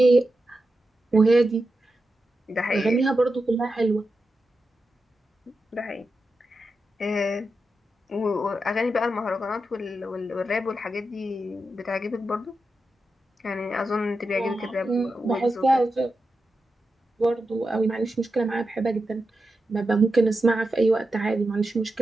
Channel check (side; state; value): both; normal; correlation 0.89